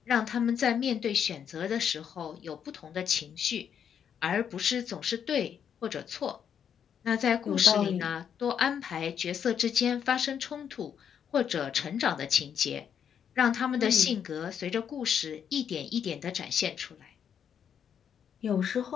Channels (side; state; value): right; quieter; 8.1 dB